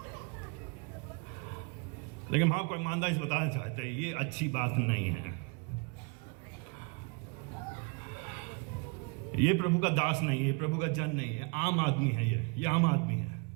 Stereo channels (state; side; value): quieter; left; 31.9 dB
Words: लेकिन हम आपको ईमानदारी से बताना चाहते हैं ये अच्छी बात नहीं है। ये प्रभु का दास नहीं है, प्रभु का जन नहीं है, आम आदमी है। ये आम आदमी है।